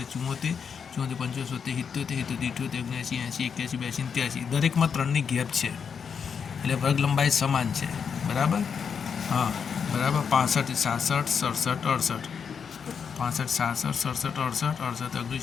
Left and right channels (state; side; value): quieter; right; 6.6 dB